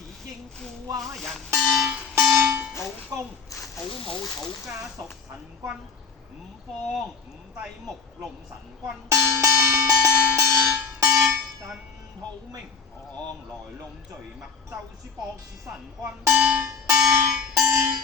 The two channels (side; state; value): right; quieter; 5.8 dB